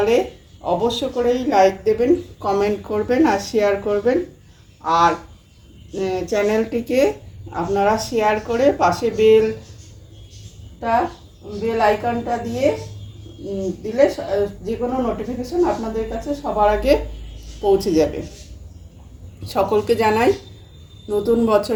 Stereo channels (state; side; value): identical; both; correlation 1.00